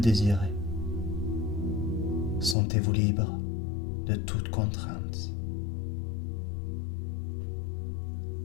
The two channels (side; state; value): right; drops out; at 2.6 s